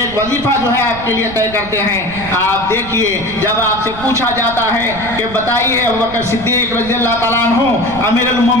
वजीफा जो है आपके लिए तय करते हैं। आप देखिए जब आपसे पूछा जाता है कि बताइए अबू बकर सिद्दीक रज़ी अल्लाह ताला अन्हु अमीरुल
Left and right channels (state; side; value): noise; right; rumble, 14 dB below the sound